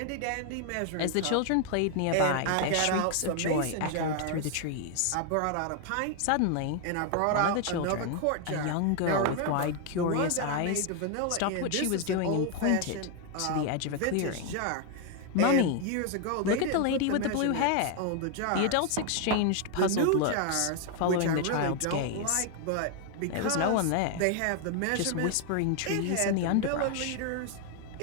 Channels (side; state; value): both; different; correlation 0.01